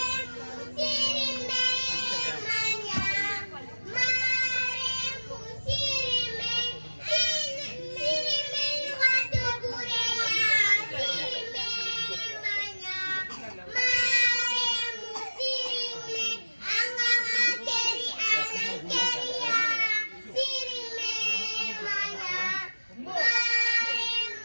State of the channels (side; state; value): both; inverted; correlation -1.00